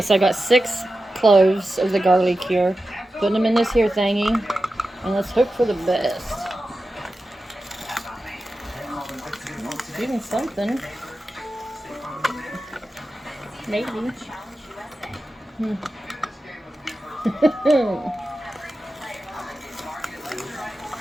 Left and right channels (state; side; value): normal; both; correlation 0.92